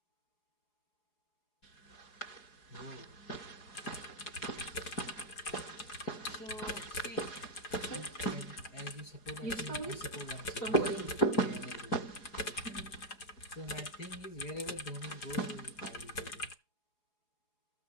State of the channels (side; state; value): right; late; 4.8 ms